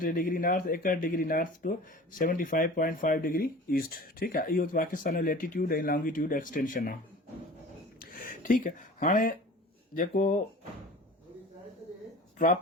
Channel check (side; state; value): both; normal; correlation 0.41